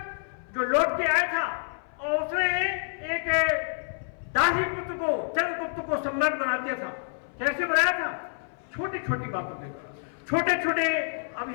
जो लौट के आया था, और उसने एक दासी पुत्र को, चंद्रगुप्त को सम्राट बना दिया था। कैसे बनाया था? छोटी छोटी बातों के द्वारा, छोटे छोटे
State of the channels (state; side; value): silent; right; 57 dB below the other